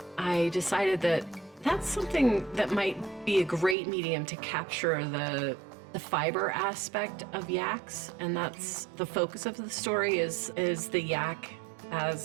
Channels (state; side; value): drops out; left; at 3.8 s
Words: I decided that that's something that might be a great medium to capture the fiber aspect of yaks, and that's the focus of the story is the yak